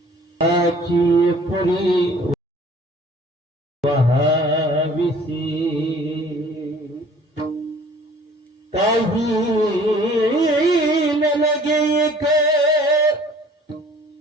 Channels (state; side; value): normal; both; correlation 0.53